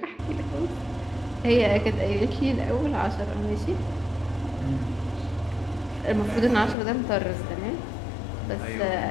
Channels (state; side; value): drops out; right; at 6.8 s